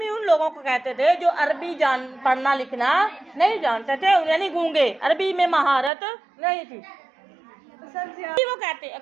ان لوگوں کو کہتے تھے جو عربی پڑھنا لکھنا نہیں جانتے تھے، یعنی گونگے، عربی میں مہارت نہیں تھی، وہ کہتے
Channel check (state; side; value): drops out; left; at 5.9 s